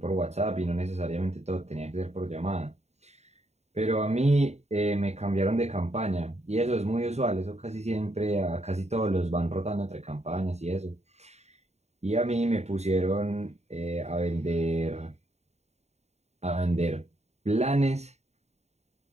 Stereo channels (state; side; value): late; left; 0.32 ms